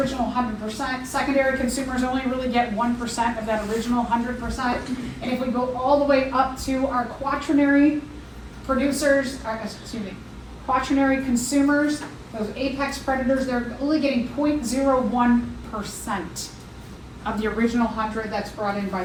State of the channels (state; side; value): identical; both; correlation 1.00